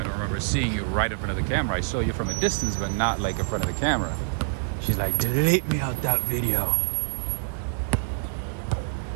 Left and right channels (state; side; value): silent; left; 61 dB below the other